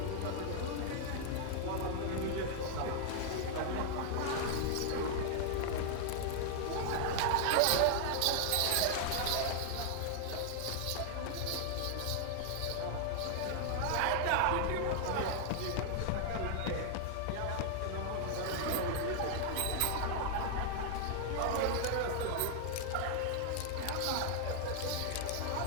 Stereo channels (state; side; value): different; both; correlation 0.00